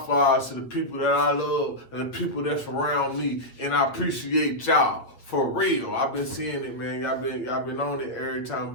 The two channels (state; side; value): late; right; 8.2 ms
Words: flowers to the people that I love and the people that's around me. And I appreciate y'all. For real. I've been seeing it, man. Y'all been on it every